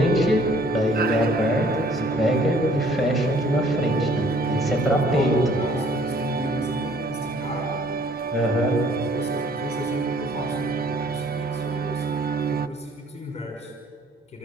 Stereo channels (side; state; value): both; normal; correlation 0.58